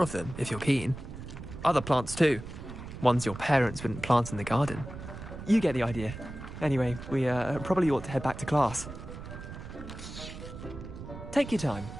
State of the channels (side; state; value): right; noise; rumble, 11 dB below the sound